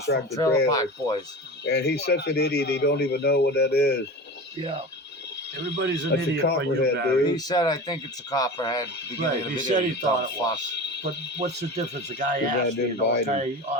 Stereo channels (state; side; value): normal; both; correlation 0.31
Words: from tractor Trailer trailer. Park Boys. And he's such an idiot, he don't even know what that is. Yeah. Everybody's an That's a idiot but you, copperhead, Barry. dude. He said, I think it's a copperhead. At the beginning Right, of the he video, said he you thought dumb it fuck. was. But what's the difference? The guy Too bad asked, didn't you know, bite him. okay,